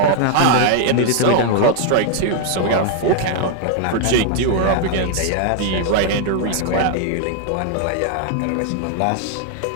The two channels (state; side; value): different; both; correlation 0.00